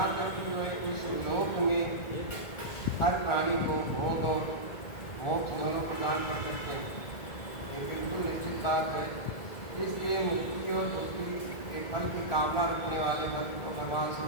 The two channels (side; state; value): right; late; 1.9 ms